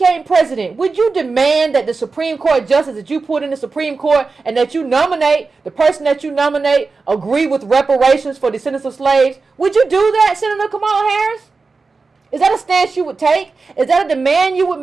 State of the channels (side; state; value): left; quieter; 4.2 dB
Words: president, would you demand that the Supreme Court justice that you put in the Supreme Court and that you nominate, the person that you nominate, agree with reparations for descendants of slaves? Would you do that, Senator Kamala Harris? Is that a stance you would take? Is that a demand you would